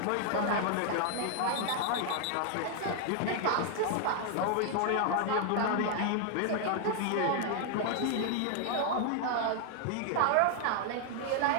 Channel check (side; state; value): both; different; correlation 0.00